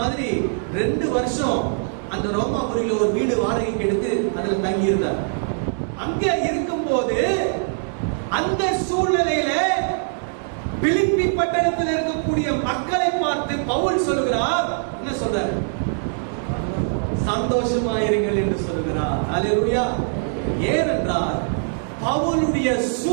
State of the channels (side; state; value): left; silent; digital silence